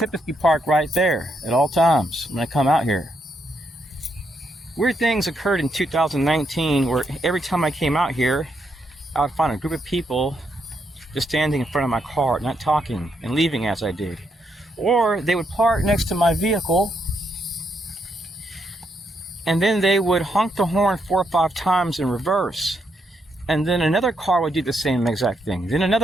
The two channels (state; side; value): normal; both; correlation 0.78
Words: park right there at all times when I come out here. Weird things occurred in 2019 where every time I came out here, I would find a group of people just standing in front of my car, not talking and leaving as I did. Or they would park next to my vehicle, and then they would honk the horn 4 or 5 times in reverse. And then another car would do the same exact thing. Then